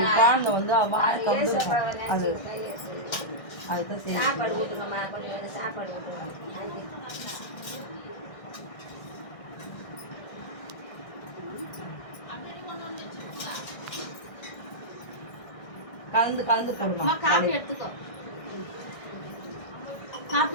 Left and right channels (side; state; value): right; late; 1.6 ms